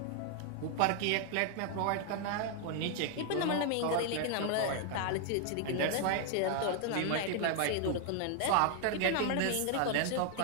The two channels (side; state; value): both; different; correlation 0.00